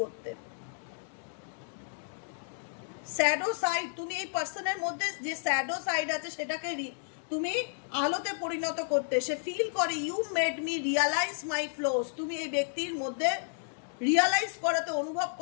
করতে। শ্যাডো সাইড, তুমি এই পার্সনের মধ্যে যে শ্যাডো সাইড আছে সেটাকে তুমি আলোতে পরিণত করতে। সে ফিল করে you made me realise my flaws. তুমি এই ব্যক্তির মধ্যে রিয়ালাইজ করাতে, অনুভব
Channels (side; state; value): right; silent; digital silence